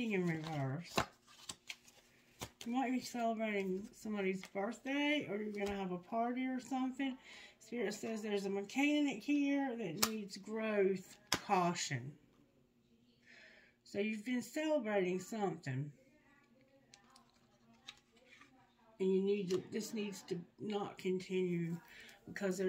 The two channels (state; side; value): identical; both; correlation 1.00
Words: in reverse? You might be celebrating somebody's birthday, or you're going to have a party or something. Spirit says there's a mechanic here that needs growth, caution. So you've been celebrating something. And this needs to not continue because